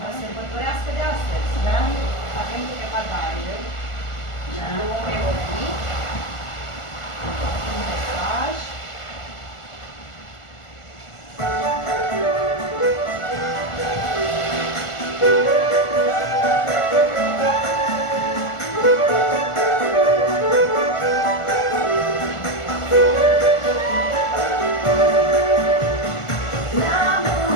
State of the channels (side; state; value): right; late; 1.4 ms